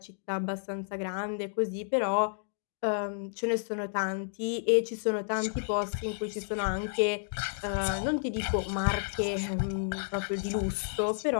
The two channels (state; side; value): silent; right; digital silence